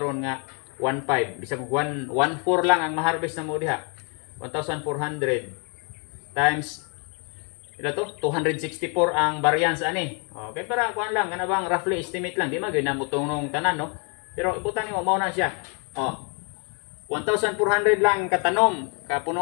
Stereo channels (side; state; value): right; quieter; 36.7 dB